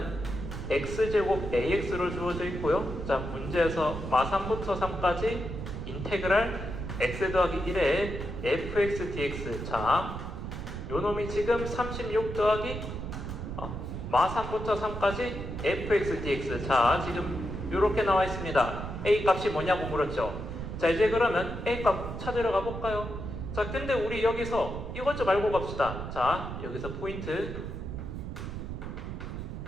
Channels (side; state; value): right; noise; rumble, 6 dB below the sound